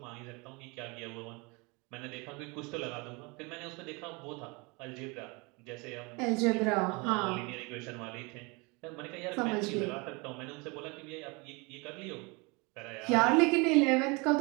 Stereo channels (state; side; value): quieter; left; 28.3 dB